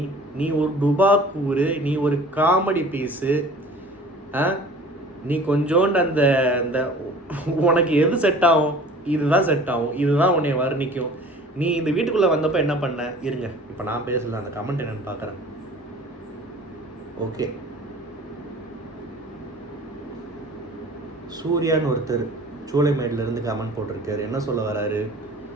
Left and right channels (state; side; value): normal; both; correlation 0.46